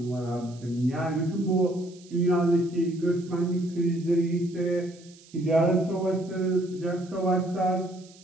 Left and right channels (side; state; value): right; noise; hiss, 25 dB below the sound